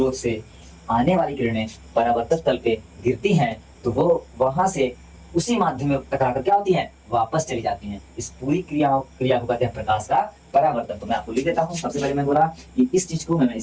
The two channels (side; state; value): both; identical; correlation 1.00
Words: से आने वाली किरणें परावर्तक तल पे गिरती हैं, तो वो वहां से उसी माध्यम में टकराकर क्या होती हैं, वापस चली जाती हैं। इस पूरी क्रिया को कहते हैं प्रकाश का परावर्तन। तो मैं आपको लिख देता हूँ। सबसे पहले मैं बोला कि इस चीज को, मैं